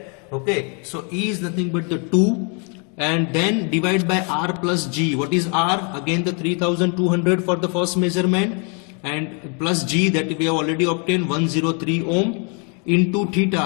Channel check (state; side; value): quieter; right; 36.7 dB